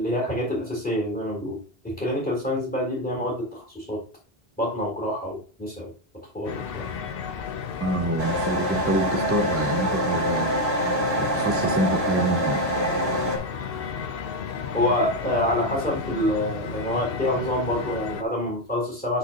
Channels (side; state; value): both; normal; correlation 0.08